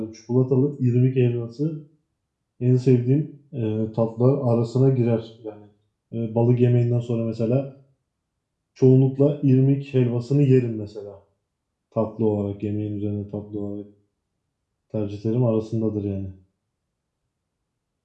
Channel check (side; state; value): both; identical; correlation 1.00